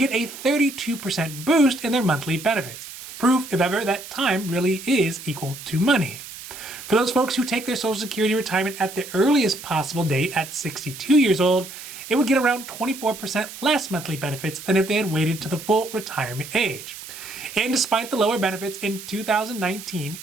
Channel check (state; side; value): noise; right; hiss, 13 dB below the sound